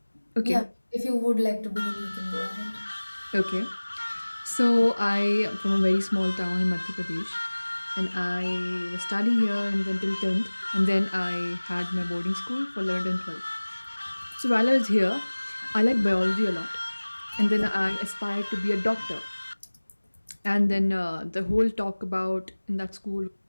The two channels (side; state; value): both; inverted; correlation -1.00